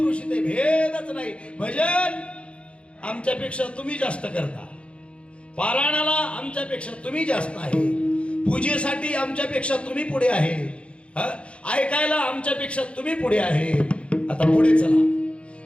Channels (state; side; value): late; right; 0.060 ms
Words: इथे भेदच नाही. भजन आमच्यापेक्षा तुम्ही जास्त करता, पारायणाला आमच्यापेक्षा तुम्ही जास्त आहे, पूजेसाठी आमच्यापेक्षा तुम्ही पुढे आहे, ऐकायला आमच्यापेक्षा तुम्ही पुढे आहे. आता पुढे चला.